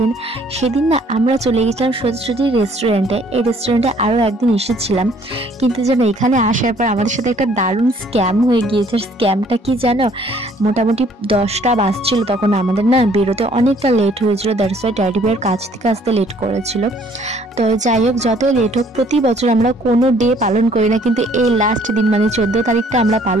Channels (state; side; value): normal; both; correlation 0.60